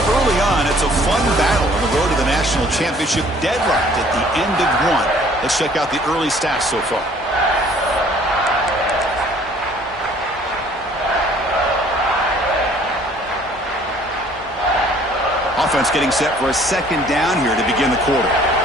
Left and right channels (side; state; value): both; normal; correlation 0.56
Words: Early on, it's a fun battle on the road to the national championship, deadlocked at the end of 1. Let's check out the early stats so far. Offense getting set for a second down here to begin the quarter.